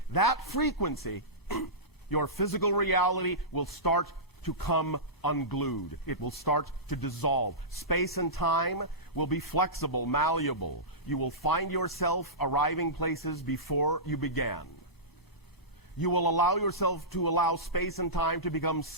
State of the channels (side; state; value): both; normal; correlation -0.18